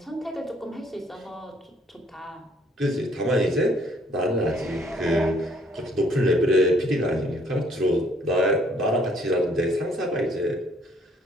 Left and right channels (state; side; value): normal; both; correlation 0.63